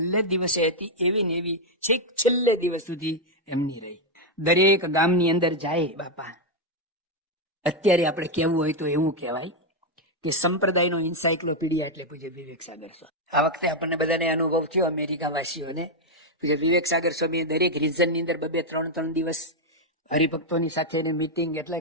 દિવસે હતી એવી ને એવી છેક છેલ્લે દિવસ સુધી એમની રહી. દરેક ગામની અંદર જાય બાપા, અત્યારે આપણે કહેવું હોય તો એવું કહેવાય કે સંપ્રદાયનો એન્સાઇક્લોપીડિયા એટલે પૂજ્ય વિવેક સાગર સ્વામી. આ વખતે આપણને બધાને અનુભવ થયો અમેરિકા વાસીઓને. પૂજ્ય વિવેક સાગર સ્વામીએ દરેક રિજનની અંદર 2-3 દિવસ હરિભક્તોની સાથે મીટિંગ એટલે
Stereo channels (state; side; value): normal; both; correlation 0.02